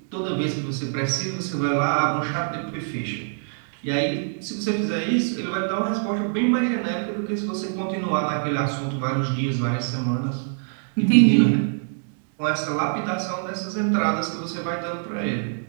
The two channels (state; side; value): silent; left; digital silence